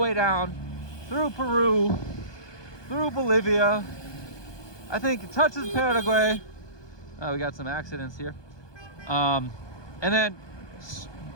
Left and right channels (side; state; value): right; late; 1.2 ms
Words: down through Peru, through Bolivia. I think it touches Paraguay. We got some accidents here. And then